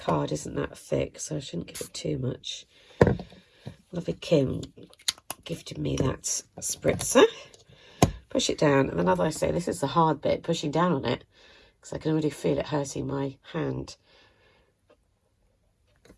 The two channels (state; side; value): identical; both; correlation 1.00